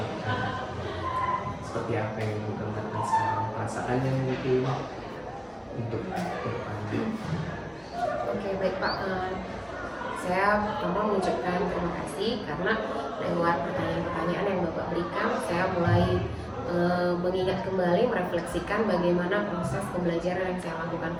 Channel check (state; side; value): identical; both; correlation 1.00